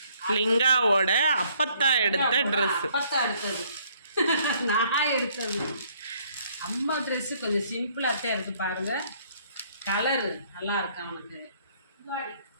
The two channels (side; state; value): both; inverted; correlation -0.64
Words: லிங்காவோட அப்பத்தா எடுத்த ட்ரெஸ். அப்பத்தா எடுத்தது நான் எடுத்தது. அம்மா ட்ரெஸ்ஸு கொஞ்சம் சிம்பிளாகத்தான் இருக்குது பாருங்கள். கலரு நல்லா இருக்கு அவனுக்கு.